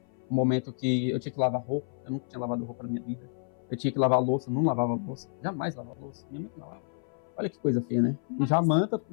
Um momento que eu tinha que lavar roupa, eu nunca tinha lavado roupa na minha vida. Eu tinha que lavar louça, eu não lavava louça, jamais lavava louça, minha mãe que lavava. Olha que coisa feia, né? E já manta,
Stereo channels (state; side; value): silent; right; 56 dB below the other